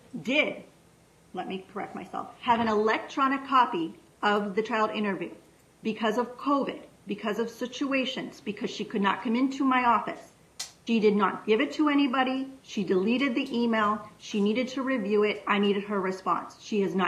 let me correct myself, have an electronic copy of the child interview because of COVID, because of situations, because she could not come into my office. She did not give it to anybody. She deleted the email. She needed to review it. I needed her response. She has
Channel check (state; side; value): identical; both; correlation 1.00